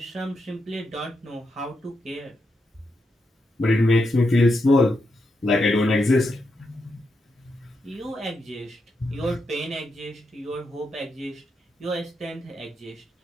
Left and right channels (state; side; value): normal; both; correlation 0.84